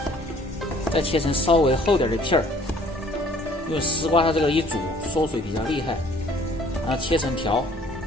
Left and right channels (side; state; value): both; normal; correlation 0.57